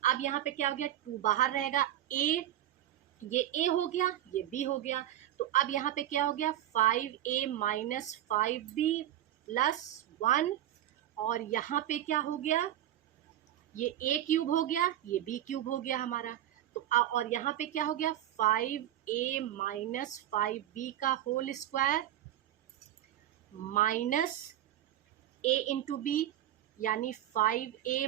अब यहाँ पे क्या हो गया, 2 बाहर रहेगा, ये a हो गया, ये b हो गया। तो अब यहाँ पे क्या हो गया, 5a माइनस 5b प्लस 1, और यहाँ पे क्या हो गया, ये a क्यूब हो गया, ये b क्यूब हो गया हमारा। तो और यहाँ पे क्या हो गया, 5a माइनस 5b का whole square minus a into B, यानी 5a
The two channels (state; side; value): quieter; left; 12.3 dB